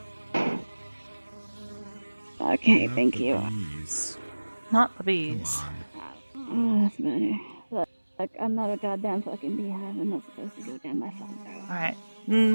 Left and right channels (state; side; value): inverted; both; correlation -1.00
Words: Okay, thank you. Not the bees. Oh, that's better. Look, I'm not a goddamn fucking beehive. I'm not supposed to go down my phone throat. Alright.